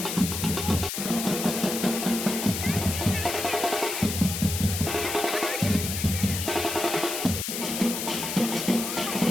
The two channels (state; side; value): noise; left; hiss, 4 dB below the sound